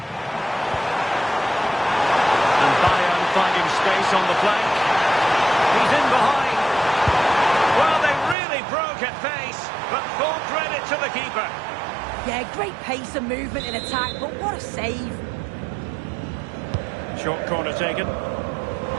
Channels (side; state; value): left; drops out; at 8.3 s